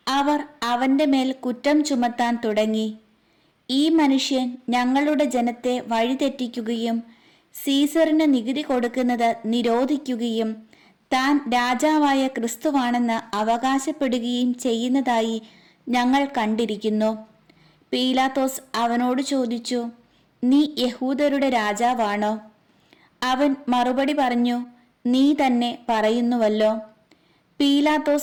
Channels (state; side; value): identical; both; correlation 1.00